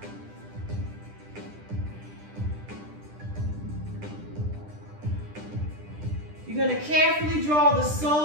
You're going to carefully draw the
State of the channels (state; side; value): late; left; 10 ms